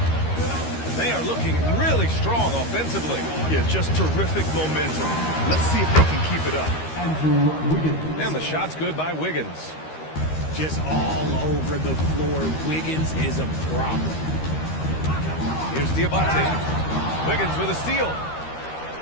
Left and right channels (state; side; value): late; right; 13 ms